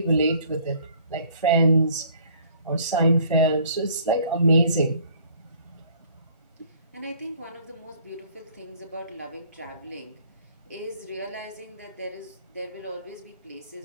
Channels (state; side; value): inverted; both; correlation -0.56